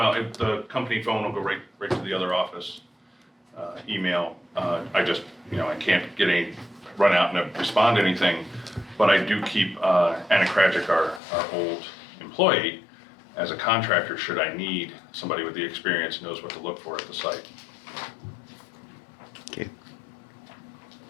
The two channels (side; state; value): right; drops out; at 11.2 s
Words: the company phone will go right to the other office. Email, I just, I can't run out and respond to anything, but I do keep Anna Krajic, our old employee, as a contractor, should I need somebody with the experience, knows what to look for at the site. Okay.